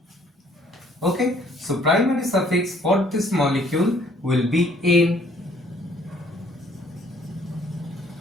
Okay, so primary suffix for this molecule will be N.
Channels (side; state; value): both; normal; correlation 0.61